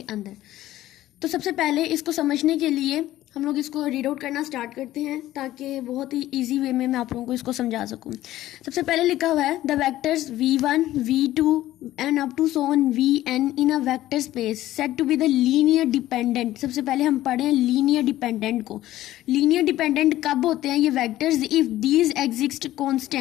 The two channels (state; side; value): quieter; right; 14.7 dB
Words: अंदर। तो सबसे पहले इसको समझने के लिए हम लोग इसको रीड आउट करना स्टार्ट करते हैं ताकि बहुत ही इजी वे में मैं आप लोगों को इसको समझा सकूं। सबसे पहले लिखा हुआ है the vectors v1 v2 and up to so on vn in a vector space set to be the linear dependent. सबसे पहले हम पढ़े हैं लीनियर डिपेंडेंट को। लीनियर डिपेंडेंट कब होते हैं ये vectors? If these exist